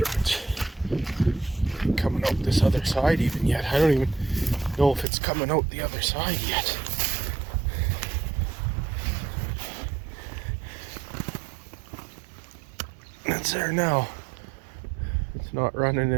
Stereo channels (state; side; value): drops out; left; at 5.1 s